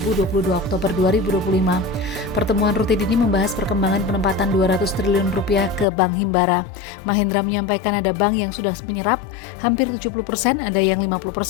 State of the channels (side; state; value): right; drops out; at 5.9 s